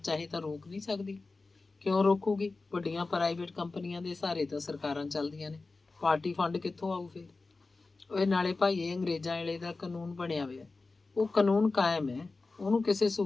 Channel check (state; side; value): quieter; right; 3.7 dB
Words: ਤਾਂ ਰੋਕ ਨਹੀਂ ਸਕਦੀ। ਕਿਉਂ ਰੋਕੂਗੀ? ਵੱਡੀਆਂ ਪ੍ਰਾਈਵੇਟ ਕੰਪਨੀਆਂ ਦੇ ਸਹਾਰੇ ਤਾਂ ਸਰਕਾਰਾਂ ਚੱਲਦੀਆਂ ਨੇ, ਪਾਰਟੀ ਫੰਡ ਕਿੱਥੋਂ ਆਊ ਫਿਰ? ਉਹ ਨਾਲੇ ਭਾਈ ਇਹ ਅੰਗਰੇਜ਼ਾਂ ਵੇਲੇ ਦਾ ਕਾਨੂੰਨ ਬਣਿਆ ਹੋਇਆ, ਉਹ ਕਾਨੂੰਨ ਕਾਇਮ ਹੈ, ਉਹਨੂੰ ਕਿਸੇ